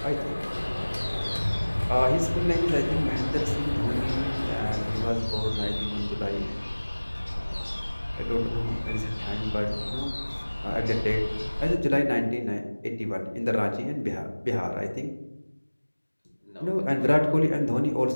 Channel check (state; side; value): inverted; both; correlation -1.00